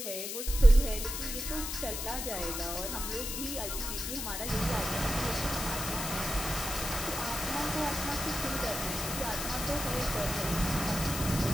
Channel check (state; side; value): noise; left; hiss, 4 dB below the sound